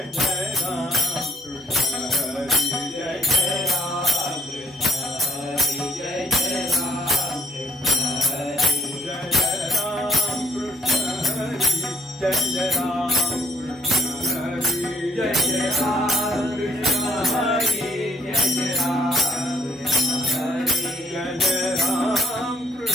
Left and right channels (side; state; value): both; normal; correlation 0.63